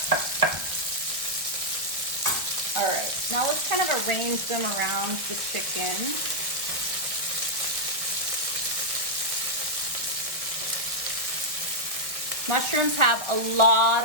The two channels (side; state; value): left; late; 1.2 ms